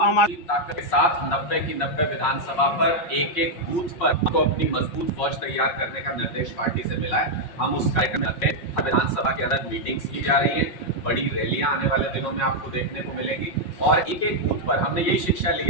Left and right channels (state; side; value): late; right; 5.5 ms